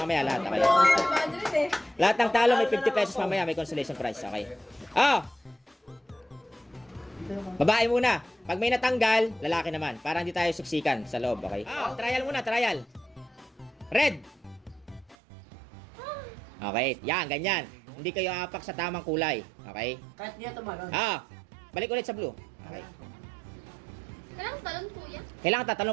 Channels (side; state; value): left; drops out; at 15.2 s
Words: lahat, okay? Lahat ng talo, may 50 pesos mamaya, may consolation prize, okay? Babae muna. Pag may natanggal, lalaki naman. Para hindi tayo siksikan sa loob, okay? Trial muna, trial. Red. Okay, yan, ganyan. Hindi kayo apak sa tamang kulay, okay? Kahit niya tumalon. Balik ulit sa blue. Okay. Kailangan talon kuya. Kailangan